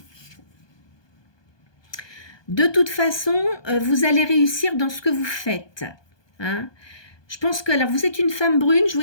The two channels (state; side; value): late; right; 1.2 ms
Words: De toute façon, vous allez réussir dans ce que vous faites. Hein. Je pense que, alors vous êtes une femme brune, je vois